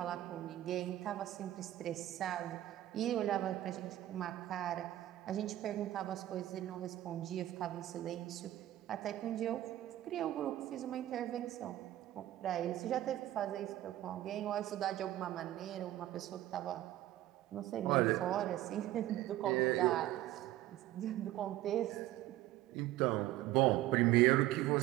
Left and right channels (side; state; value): left; quieter; 14.5 dB